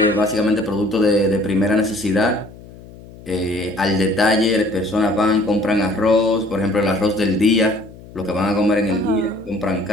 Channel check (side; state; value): left; noise; hum, 19 dB below the sound